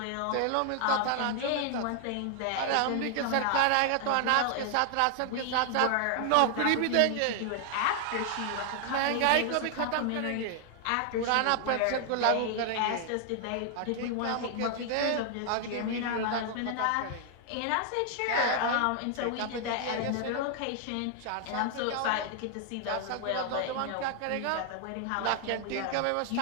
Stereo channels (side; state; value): both; different; correlation 0.00